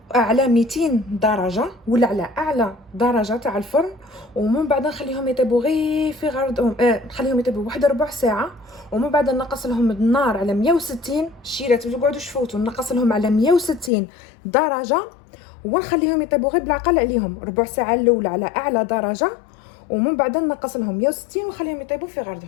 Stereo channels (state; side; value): drops out; right; at 13.9 s